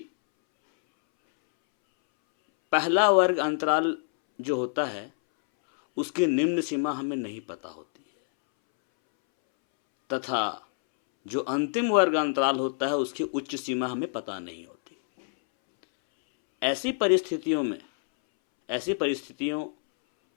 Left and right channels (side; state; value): right; silent; 60 dB below the other